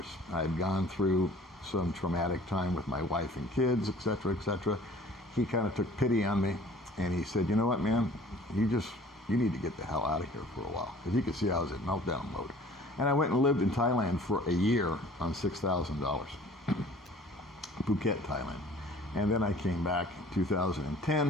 I had gone through some traumatic time with my wife and kids, etc., etc. He kind of took pity on me, and he said, you know what, man, you need to get the hell out of here for a while, because he could see I was in meltdown mode. And I went and lived in Thailand for a year on $6,000, Phuket, Thailand. And then I came back in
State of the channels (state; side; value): normal; both; correlation 0.50